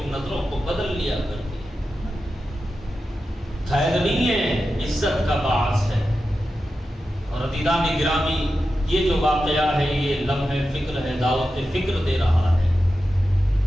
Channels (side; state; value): both; normal; correlation 0.91